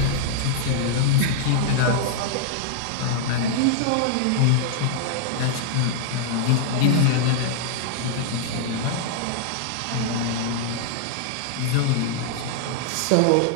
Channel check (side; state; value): both; different; correlation -0.01